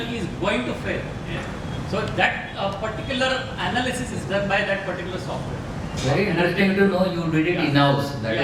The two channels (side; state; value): both; identical; correlation 1.00